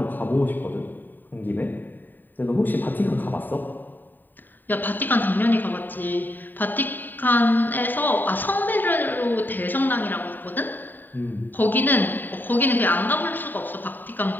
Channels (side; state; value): right; late; 0.090 ms